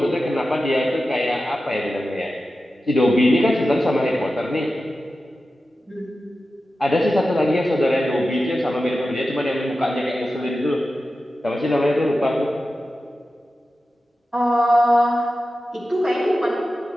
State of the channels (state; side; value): normal; both; correlation 0.93